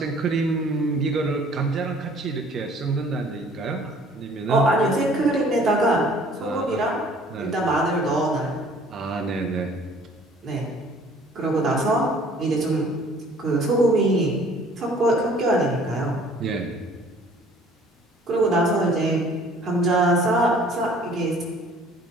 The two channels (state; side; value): normal; both; correlation 0.54